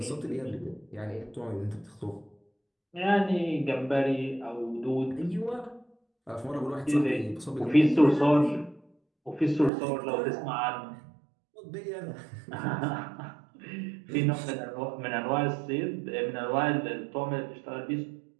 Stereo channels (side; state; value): left; drops out; at 9.7 s